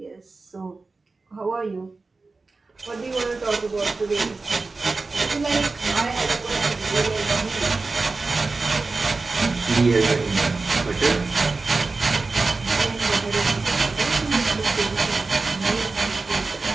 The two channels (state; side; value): quieter; left; 3.8 dB